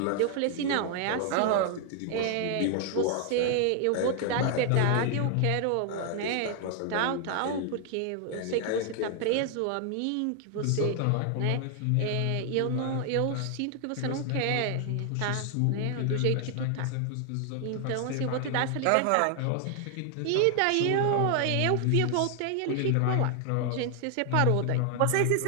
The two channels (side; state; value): both; different; correlation 0.00